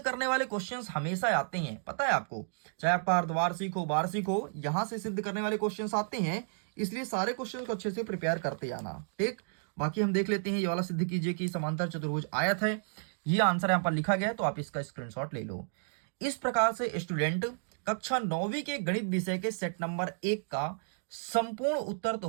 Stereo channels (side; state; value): left; silent; digital silence